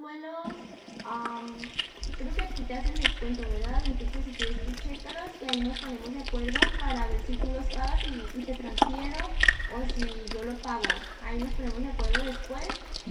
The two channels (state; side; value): identical; both; correlation 1.00